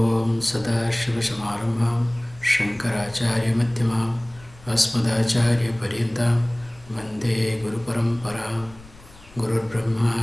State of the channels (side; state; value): left; noise; rumble, 22 dB below the sound